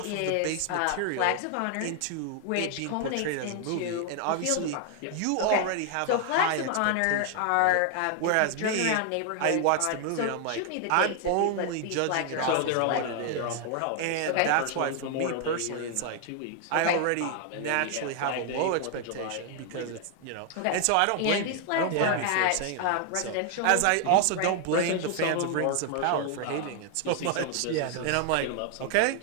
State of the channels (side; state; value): both; different; correlation 0.00